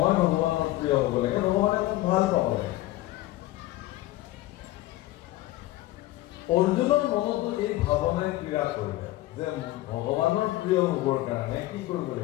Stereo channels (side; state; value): right; quieter; 16.8 dB